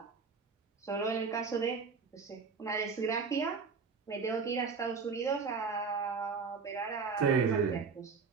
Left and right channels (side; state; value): left; quieter; 5.1 dB